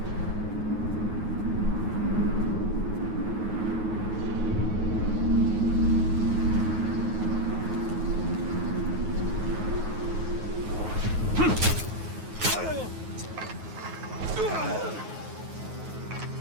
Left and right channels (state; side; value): late; left; 9.4 ms